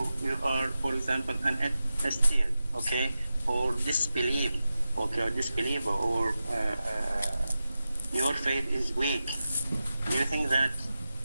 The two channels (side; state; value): both; inverted; correlation -0.93